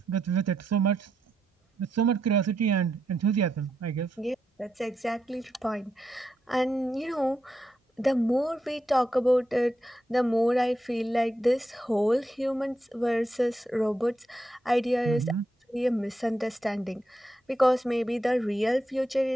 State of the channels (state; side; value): normal; both; correlation 0.83